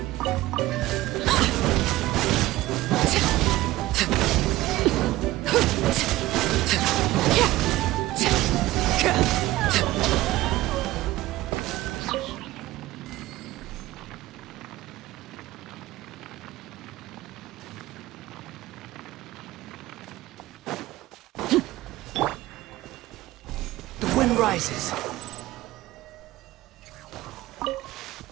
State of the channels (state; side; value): quieter; left; 17.2 dB